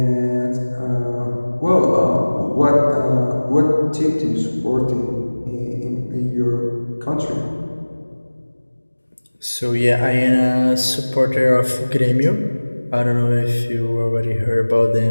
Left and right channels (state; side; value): inverted; both; correlation -1.00